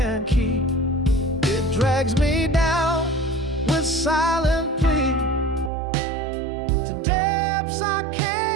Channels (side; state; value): left; drops out; at 5.7 s